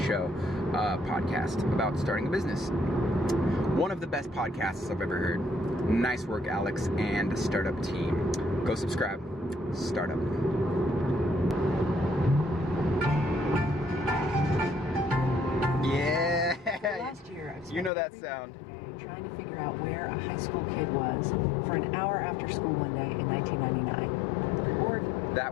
show podcast about starting a business. One of the best podcasts I've ever heard. Nice work, Alex and Startup team. Go subscribe. Startup. Yeah. Last year, I You know that sound. trying to figure out where a high school kid was for an hour after school one day in 1999. Or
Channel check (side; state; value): right; drops out; at 17.9 s